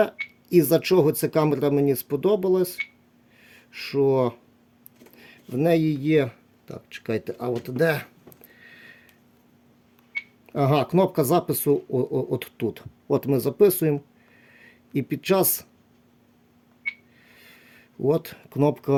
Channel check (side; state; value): both; identical; correlation 1.00